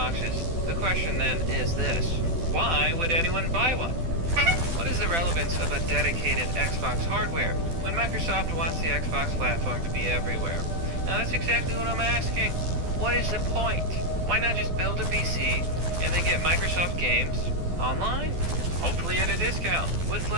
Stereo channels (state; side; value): late; left; 12 ms